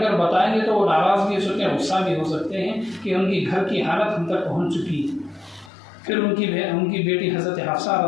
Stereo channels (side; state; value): right; drops out; at 5.7 s